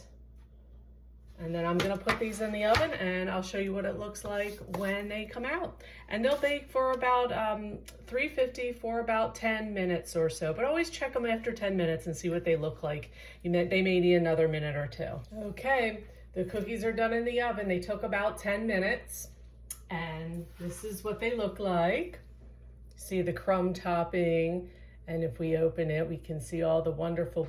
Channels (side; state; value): both; identical; correlation 1.00